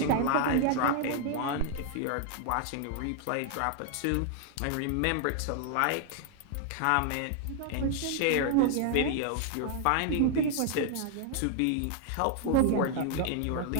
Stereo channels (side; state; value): both; different; correlation 0.00